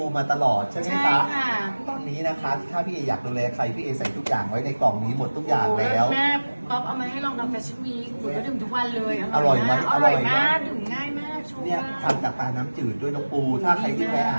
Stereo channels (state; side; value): inverted; both; correlation -1.00